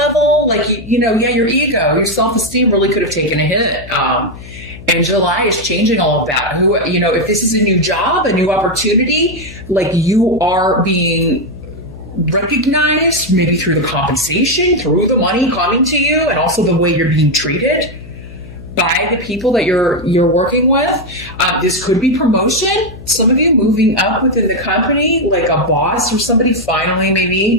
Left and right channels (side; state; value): left; noise; hum, 16 dB below the sound